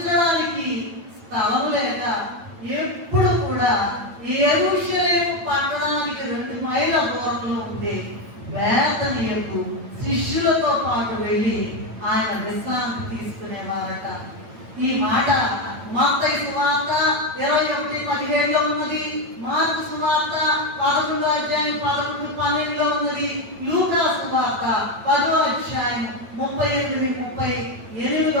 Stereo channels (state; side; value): late; left; 9.0 ms